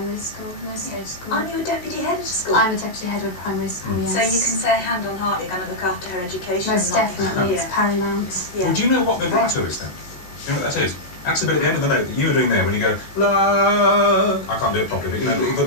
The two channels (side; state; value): right; late; 17 ms